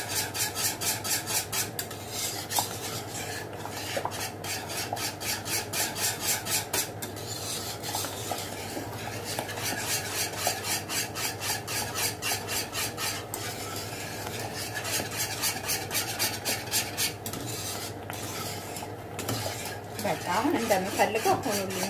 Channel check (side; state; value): both; identical; correlation 1.00